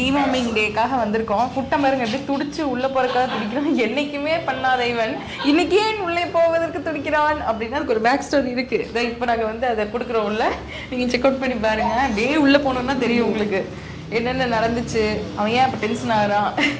டேக்காக வந்திருக்கோம். குட்டன் பாருங்க எப்படி துடிச்சு உள்ளே போகிறக்காக துடிக்கிறான். என்றைக்குமே பண்ணாத இவன் இன்றைக்கி ஏன் உள்ளே போவதற்கு துடிக்கிறான் அப்படின்னா அதுக்கு ஒரு பேக் ஸ்டோரி இருக்குது. இதை இப்போ நாங்கள் வந்து அதை கொடுக்குறோம். உள்ள நீங்கள் செக் அவுட் பண்ணி பாருங்கள். அப்படியே உள்ளே போனோன்னா தெரியும் உங்களுக்கு என்னென்ன நடந்துச்சு, அவன் ஏன் இப்போ டென்ஷன் ஆகிறான்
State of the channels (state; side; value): identical; both; correlation 1.00